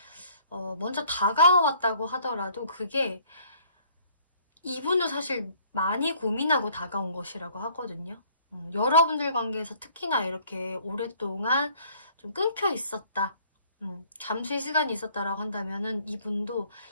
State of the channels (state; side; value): inverted; both; correlation -0.58